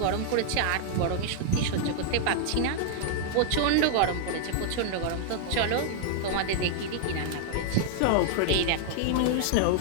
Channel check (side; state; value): both; different; correlation -0.01